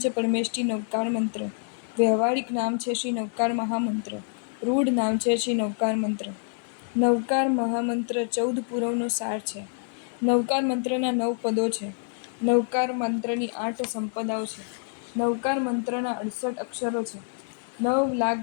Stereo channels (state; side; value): silent; right; 59 dB below the other